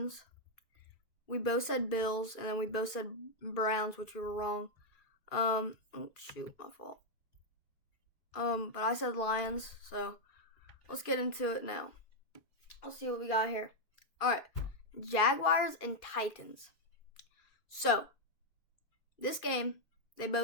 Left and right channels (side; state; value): right; late; 2.4 ms